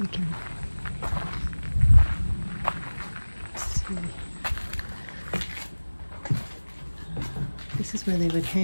we can see. This is where they would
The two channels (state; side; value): inverted; both; correlation -1.00